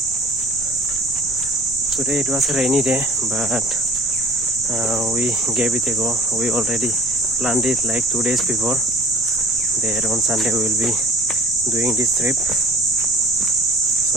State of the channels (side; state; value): right; noise; rumble, 18 dB below the sound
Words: Today it was a rainy day, but we gave it a go. We already planned it like 2 days before. There on Sunday we will be doing this trip.